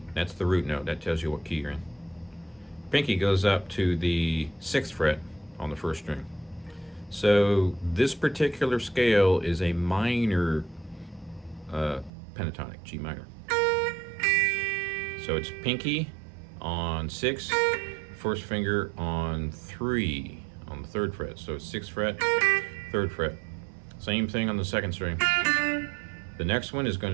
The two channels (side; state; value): left; drops out; at 12.1 s